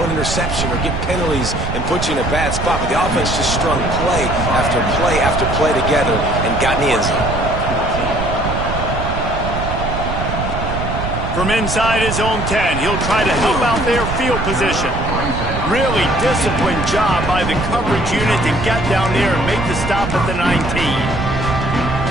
an interception or get penalties and put you in a bad spot. But the offense just strung play after play after play together and got in the end zone. From inside his own 10, he'll try to help out their field position. Really disciplined job by the coverage unit to get down there and make the stop at the 19.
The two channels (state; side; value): noise; right; rumble, 4 dB below the sound